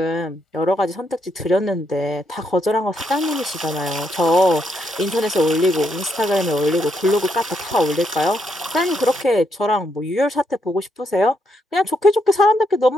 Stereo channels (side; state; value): both; normal; correlation 0.77